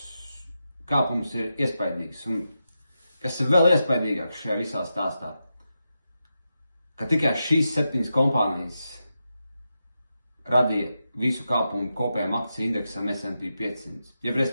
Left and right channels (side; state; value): both; inverted; correlation -0.88